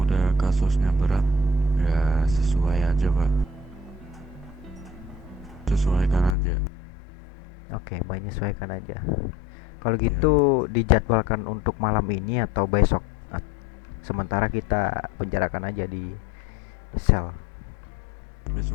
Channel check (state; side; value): drops out; right; at 6.4 s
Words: kasusnya berat ya sesuai aja pak, sesuaikan aja. Oke, menyesuaikan aja. Kalau Ya, gitu dijadwalkan untuk malam ini atau besok? Sementara kita penjarakan aja di sel